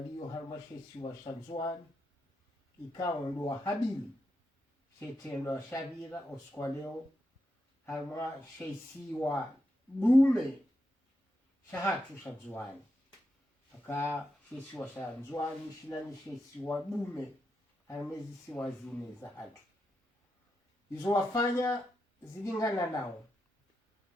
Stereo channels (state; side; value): normal; both; correlation 0.85